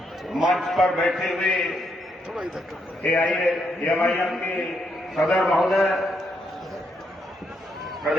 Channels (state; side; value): normal; both; correlation 0.77